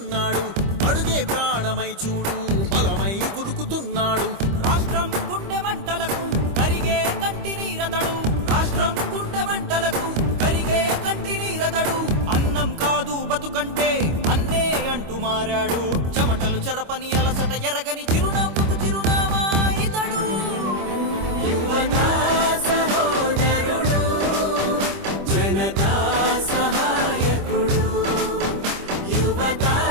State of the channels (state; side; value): late; left; 25 ms